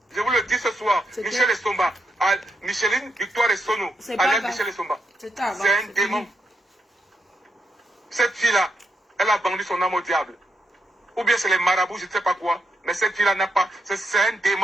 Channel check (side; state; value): both; normal; correlation 0.82